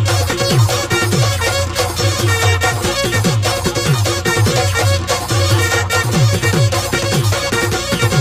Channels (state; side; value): identical; both; correlation 1.00